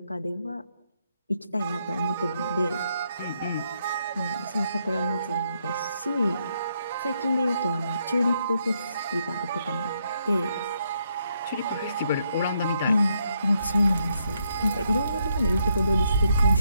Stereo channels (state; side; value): inverted; both; correlation -0.77